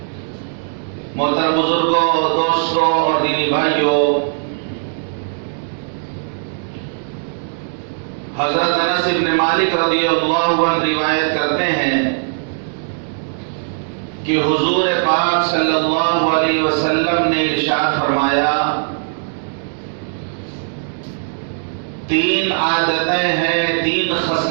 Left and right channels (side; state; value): left; silent; digital silence